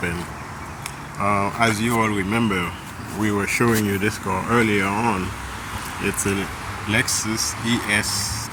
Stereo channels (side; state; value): both; identical; correlation 1.00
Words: As you all remember, we were showing you this car earlier on. It's a Lexus ES